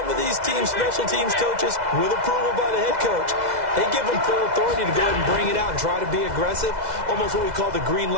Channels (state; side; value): late; left; 2.0 ms